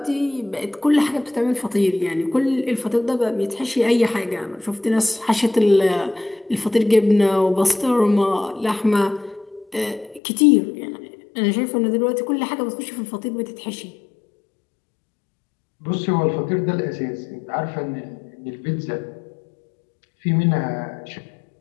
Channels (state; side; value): drops out; right; at 10.2 s